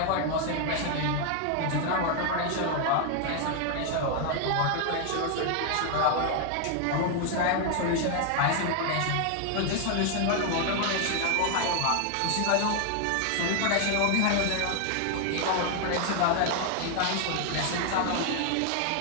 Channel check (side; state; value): both; different; correlation 0.00